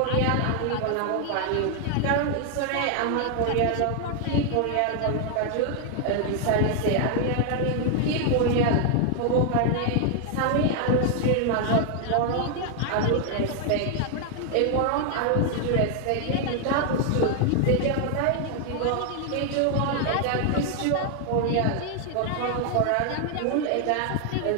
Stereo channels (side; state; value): both; different; correlation 0.00